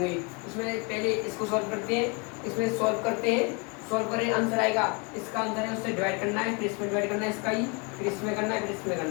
इसमें पहले इसको सॉल्व करते हैं। इसमें सॉल्व करते हैं, सॉल्व करें आंसर आएगा। इसका आंसर है उससे डिवाइड करना है, फिर इसमें डिवाइड करना है इसका ही, फिर इसमें करना है, फिर इसमें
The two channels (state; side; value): quieter; right; 31.1 dB